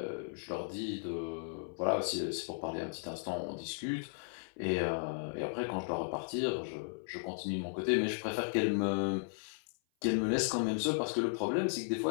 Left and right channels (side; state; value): right; silent; 54 dB below the other